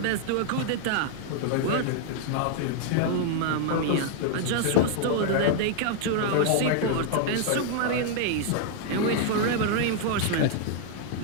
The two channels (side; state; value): both; different; correlation 0.00